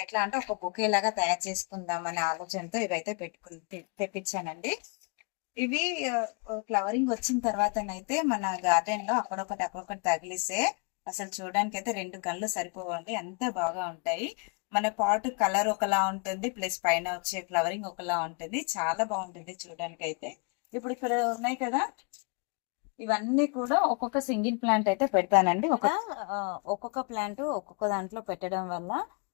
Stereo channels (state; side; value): quieter; right; 35.6 dB